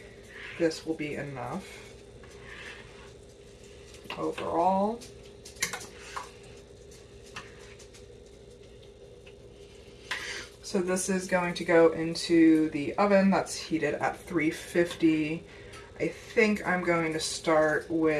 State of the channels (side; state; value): both; identical; correlation 1.00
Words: this will be enough overall. So this is going to go into the oven that's heated at 350. I think I'm going to start